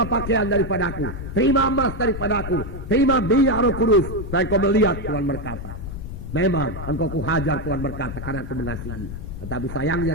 pakaian daripadaku, terima emas daripadaku, terima minyak Roh Kudus, supaya engkau melihat, Tuhan berkata. Memang engkau kuhajar, Tuhan berkata, karena aku mengasihi. Tetapi sayangnya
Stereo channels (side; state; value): left; noise; rumble, 8 dB below the sound